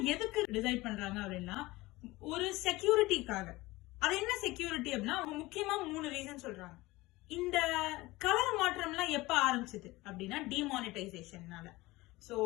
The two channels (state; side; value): quieter; right; 20.2 dB